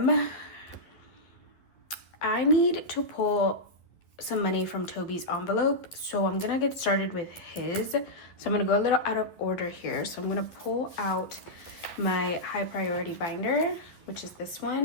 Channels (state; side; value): late; right; 11 ms